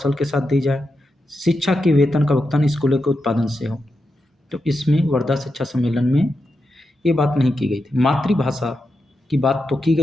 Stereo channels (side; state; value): both; normal; correlation 0.87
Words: के साथ दी जाए। शिक्षा के वेतन का भुगतान स्कूलों के उत्पादन से हो। तो इसमें वर्धा शिक्षा सम्मेलन में ये बात नहीं की गई थी। मातृभाषा की बात तो की